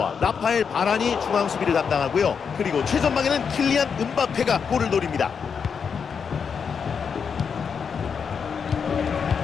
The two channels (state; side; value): quieter; right; 6.4 dB